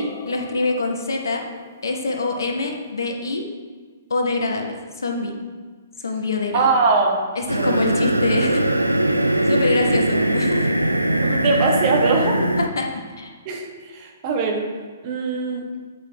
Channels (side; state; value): both; inverted; correlation -0.69